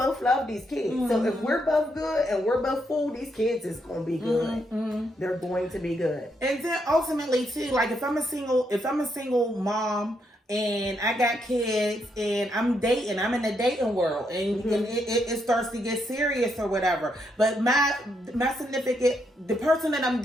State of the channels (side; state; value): both; normal; correlation 0.78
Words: love these kids. So if we're both good and we're both full, these kids is going to be good. They're going to be good. And then ultimately too, like if I'm a single mom, and I got kids, and I'm dating. I'm in the dating world, and, and it starts to get serious or whatever. But my significant, the person that I'm